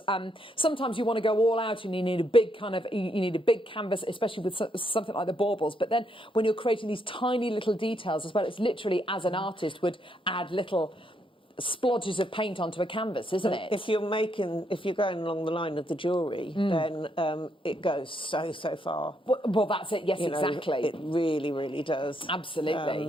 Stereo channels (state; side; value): normal; both; correlation 0.76